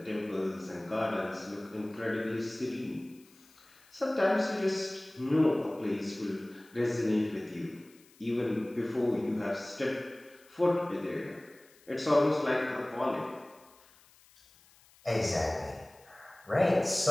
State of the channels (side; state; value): left; noise; hiss, 28 dB below the sound